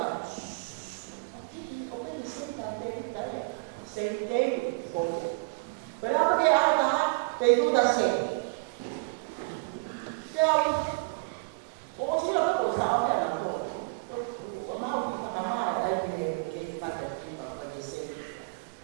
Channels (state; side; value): quieter; left; 32.9 dB